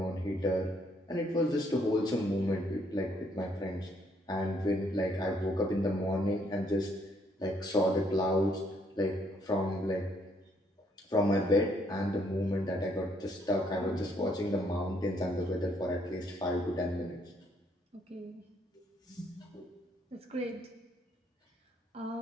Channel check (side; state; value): both; normal; correlation 0.69